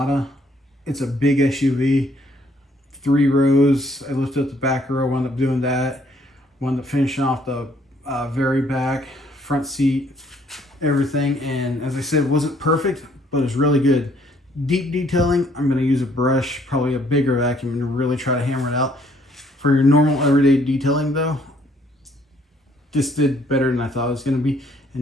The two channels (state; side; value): normal; both; correlation 0.65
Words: It's a big SUV, 3 rows. I lifted up the back row, wound up doing that. Wound up finishing off the very back, front seat, everything. And as I said, it wasn't perfect, but it's really good. Deep detailing, I'm going to use a brush, probably a bigger vacuum, and really try to hammer it out. For your normal everyday detailing though, this did better than I thought it was going to be.